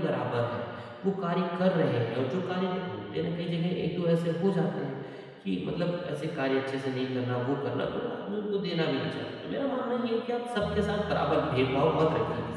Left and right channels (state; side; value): identical; both; correlation 1.00